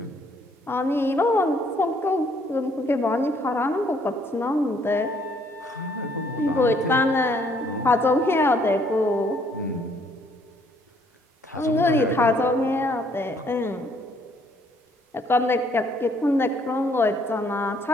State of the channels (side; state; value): both; normal; correlation 0.65